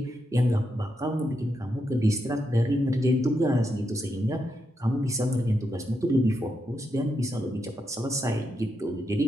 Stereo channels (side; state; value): both; normal; correlation 0.83